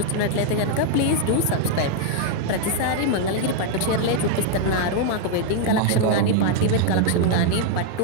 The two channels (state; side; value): different; both; correlation 0.00